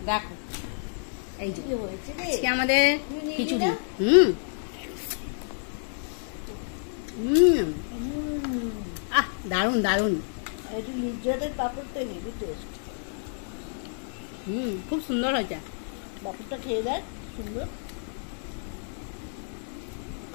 দেখো এই যে আজকে আমাদের খিচুড়ি, দারুন দারুন। একটু নির্যাতের পাপড় তো হেভি টেস্ট, খুব সুন্দর হয়েছে। পাপড়টা খেয়ে দেখ, সুন্দর।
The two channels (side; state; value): right; silent; digital silence